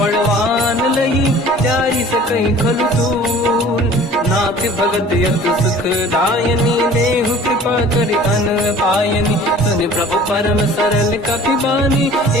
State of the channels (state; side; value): normal; both; correlation 0.47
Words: लही जारी सकई खलु तूल नाथ भगत यत सुख दायनी देहु कृपा करि अन पायनी सुनि प्रभु परम सरल कपि बानी